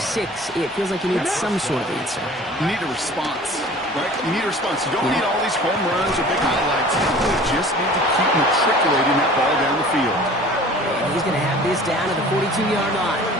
6, it feels like you need some sort of answer. You need a response, right? You need a response. You don't need all these home runs or big highlights. You just need to keep matriculating that ball down the field. And he's going to have this down to the 42-yard line.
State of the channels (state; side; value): normal; both; correlation 0.45